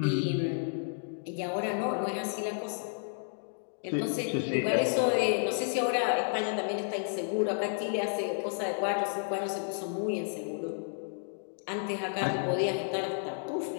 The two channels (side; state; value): right; silent; digital silence